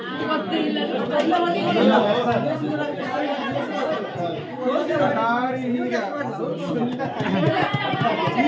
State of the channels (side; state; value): both; identical; correlation 1.00